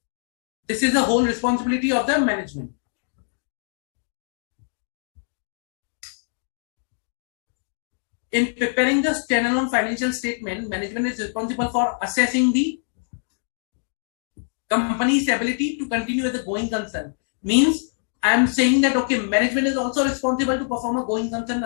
this is the whole responsibility of the management. In preparing the standalone financial statement, management is responsible for assessing the company's ability to continue as a going concern. Means I am saying that okay, management is also responsible to perform a going concern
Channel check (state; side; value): silent; right; 63 dB below the other